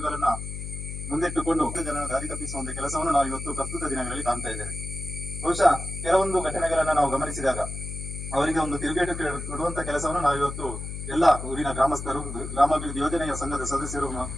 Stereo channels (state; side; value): noise; left; hum, 7 dB below the sound